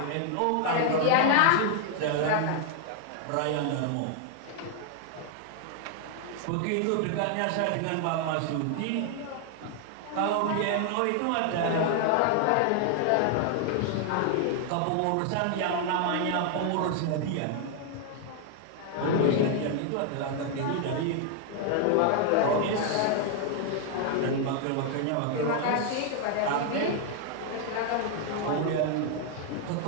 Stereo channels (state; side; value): different; both; correlation 0.00